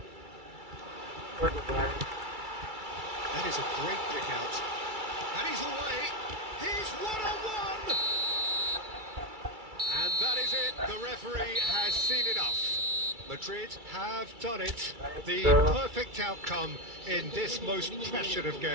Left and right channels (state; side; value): late; left; 2.3 ms